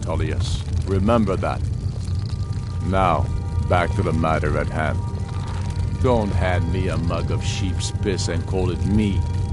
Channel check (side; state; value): both; identical; correlation 1.00